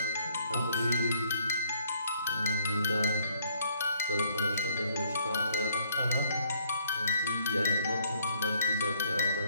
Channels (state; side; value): inverted; both; correlation -0.65